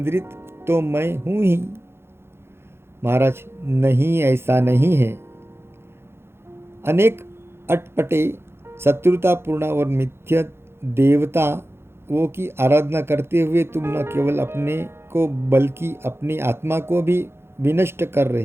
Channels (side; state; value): left; late; 0.12 ms